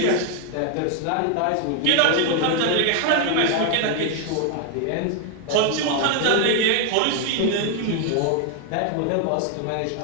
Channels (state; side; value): different; both; correlation 0.00